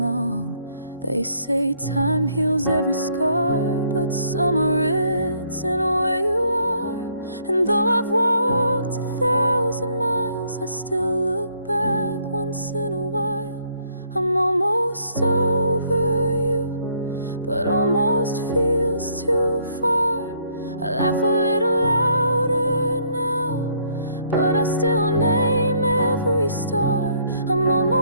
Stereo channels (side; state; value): both; inverted; correlation -0.67